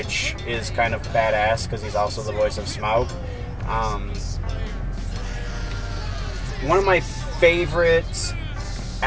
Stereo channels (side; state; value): both; identical; correlation 1.00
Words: is kind of badass because he's also the voice of Smaug. One of my favorite